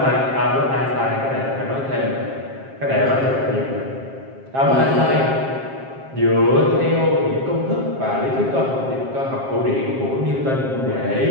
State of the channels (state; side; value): late; left; 7.5 ms